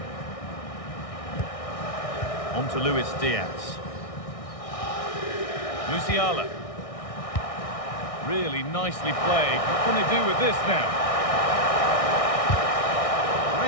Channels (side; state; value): right; late; 1.6 ms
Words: On to Luis Diaz. Musiala. Really nicely played. What can they do with this now?